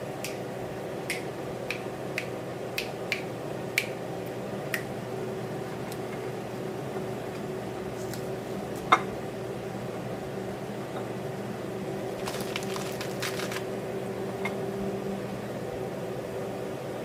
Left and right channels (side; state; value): both; identical; correlation 1.00